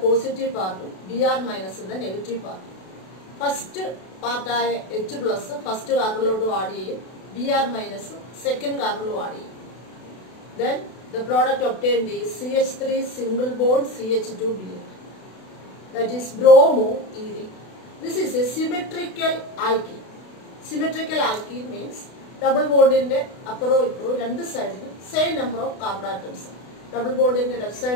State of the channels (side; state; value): right; late; 32 ms